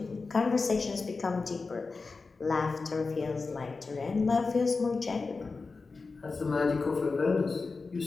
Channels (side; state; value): right; quieter; 4.2 dB